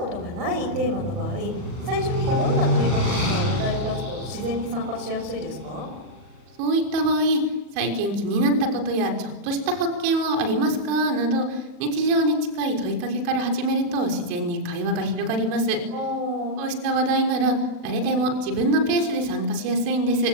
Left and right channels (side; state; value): left; late; 40 ms